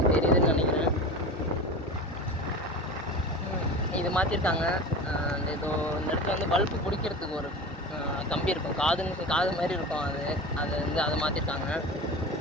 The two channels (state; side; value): normal; both; correlation 0.31